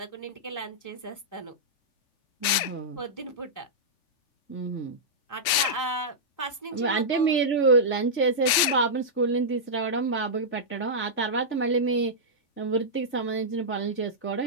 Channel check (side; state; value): right; late; 3.4 ms